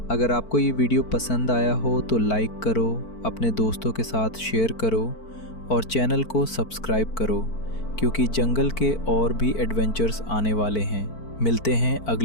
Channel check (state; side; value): late; right; 4.5 ms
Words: अगर आपको ये वीडियो पसंद आया हो तो लाइक करो, अपने दोस्तों के साथ शेयर करो और चैनल को सब्सक्राइब करो, क्योंकि जंगल के और भी एडवेंचर्स आने वाले हैं। मिलते हैं